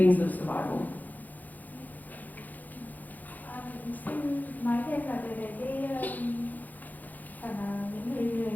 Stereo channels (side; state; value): right; late; 0.082 ms